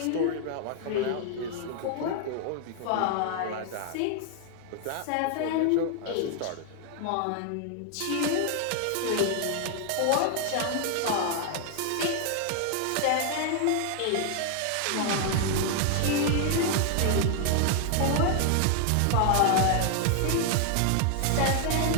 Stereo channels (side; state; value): both; different; correlation 0.00